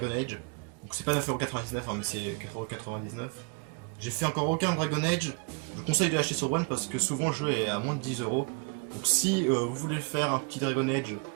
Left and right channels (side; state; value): left; quieter; 32.6 dB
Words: Age. Donc c'est pas 9,99€, hein, mais c'est 4,99€. J'ai fait encore aucun Dragon Age. Je vous conseille de l'acheter sur One parce que souvent le jeu est à moins de 10€. Donc si vous voulez faire un petit Dragon Age